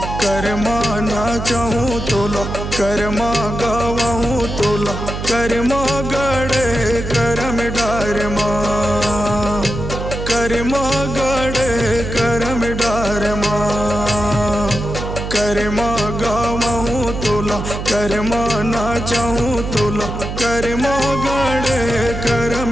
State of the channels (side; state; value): right; noise; hum, 5 dB below the sound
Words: करमा ना चाहूँ तोला, करमा गवाहूँ तोला, करमा गड़े करम डार माँ, करमा गड़े करम डार माँ, करमा गवाहूँ तोला, करमा ना चाहूँ तोला, करमा गड़े करम